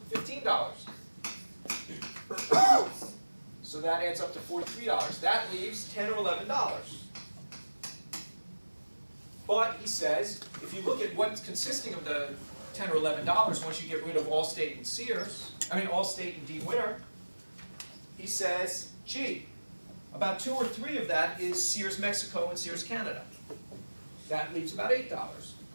So that adds up to $43. That leaves $10 or $11. But he says, if you look at what's consisting of the $10 or $11, once you get rid of Allstate and Allstate and Dean Witter, he says, gee, about 2 or 3 of that is Sears Mexico and Sears Canada. That leaves about $8.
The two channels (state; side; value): inverted; both; correlation -1.00